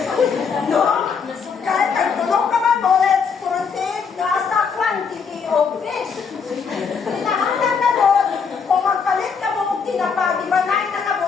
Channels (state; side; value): quieter; right; 5.9 dB